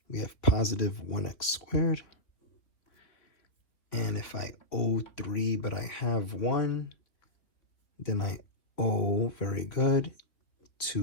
We have positive 1x². And if I owe 3, but I have 1, then I owe, very good,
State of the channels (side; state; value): right; late; 3.1 ms